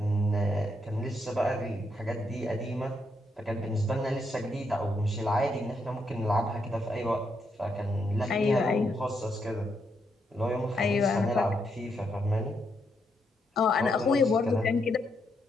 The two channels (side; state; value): both; normal; correlation 0.79